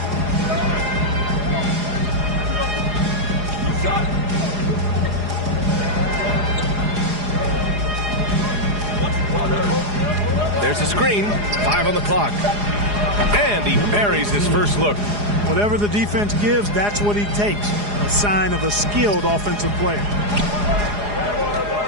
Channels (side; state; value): left; late; 4.8 ms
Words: There's a screen. 5 on the clock. And he buries his first look. Whatever the defense gives, that's what he takes. A sign of a skilled offensive player.